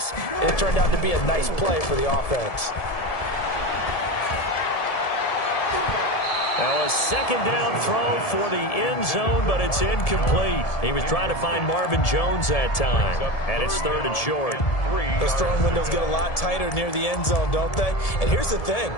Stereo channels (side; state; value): right; late; 1.7 ms